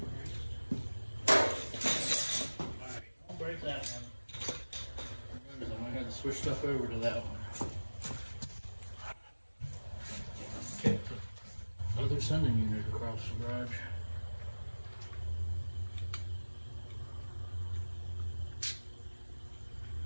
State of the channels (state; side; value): inverted; both; correlation -1.00